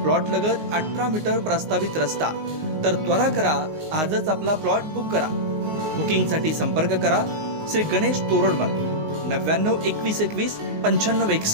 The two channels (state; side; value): late; left; 19 ms